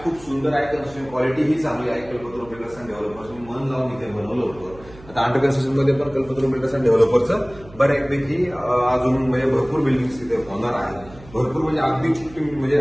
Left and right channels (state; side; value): noise; right; hum, 21 dB below the sound